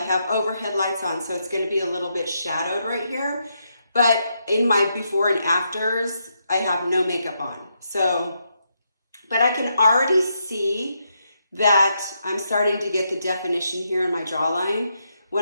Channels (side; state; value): both; inverted; correlation -0.80